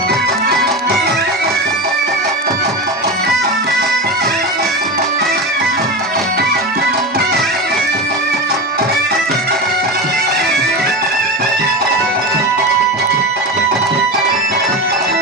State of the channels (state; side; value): normal; both; correlation 0.22